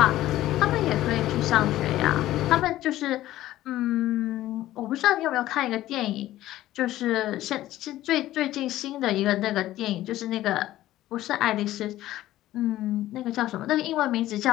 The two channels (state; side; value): quieter; right; 14.8 dB